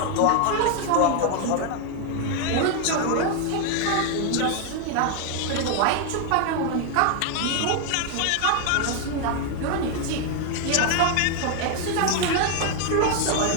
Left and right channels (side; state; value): both; different; correlation 0.01